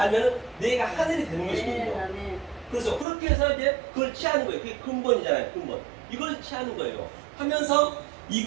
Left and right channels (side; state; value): left; drops out; at 3.1 s